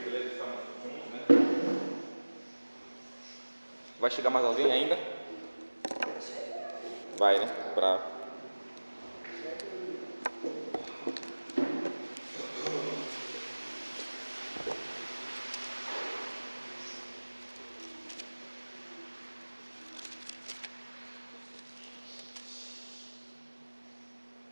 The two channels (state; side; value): inverted; both; correlation -1.00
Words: estamos juntos, né? Vai chegar mais alguém ainda? Vai, né?